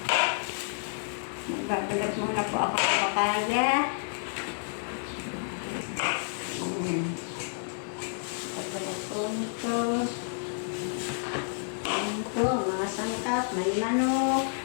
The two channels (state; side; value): silent; right; digital silence